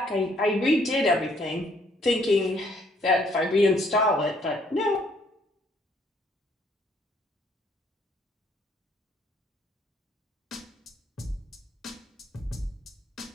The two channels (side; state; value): both; normal; correlation 0.66